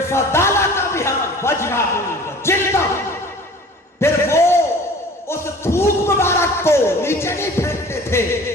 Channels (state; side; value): normal; both; correlation 0.45